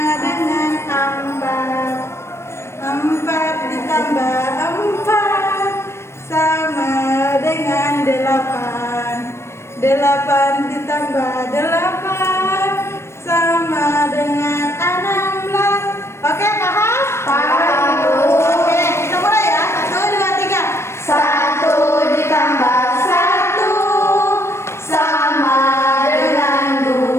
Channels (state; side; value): late; right; 0.13 ms